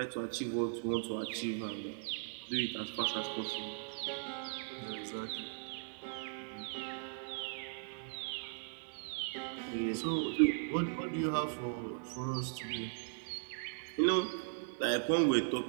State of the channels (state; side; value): silent; left; digital silence